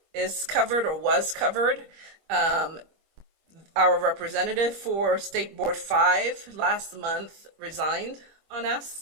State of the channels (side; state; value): left; late; 25 ms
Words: is covered or was covered. Our representative for State Board 5 last month resigned on